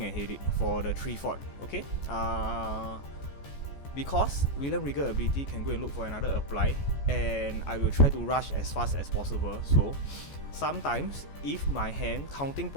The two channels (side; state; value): right; late; 14 ms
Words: I hate it for the 3/4. Okay. Because William Regal ability can go and look for another apply, and I will try to rush as fast as possible. So sometimes, if my hand counting